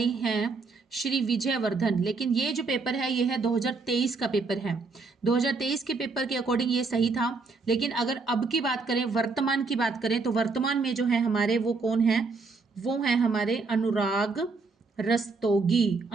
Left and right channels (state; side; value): quieter; left; 4.2 dB